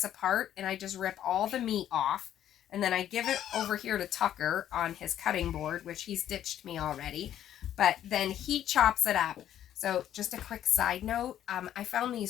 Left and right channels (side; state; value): right; quieter; 11.1 dB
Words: apart, and I just rip all the meat off. And then I give it over here to Tucker on his cutting board, which he's ditched me already. But then he chops it up. So just a quick side note, I found